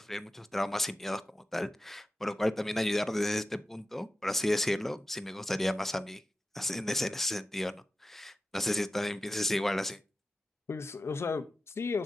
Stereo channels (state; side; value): normal; both; correlation 0.93